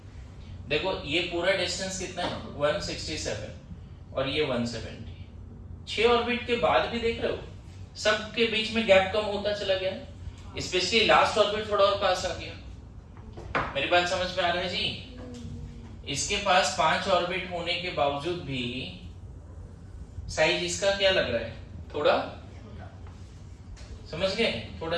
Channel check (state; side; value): identical; both; correlation 1.00